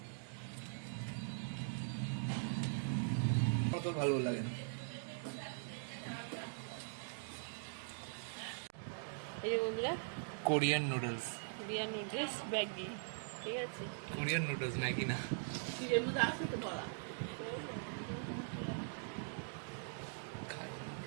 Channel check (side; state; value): left; silent; digital silence